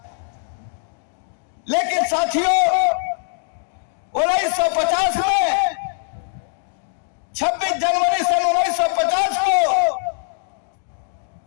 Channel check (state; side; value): silent; right; 64 dB below the other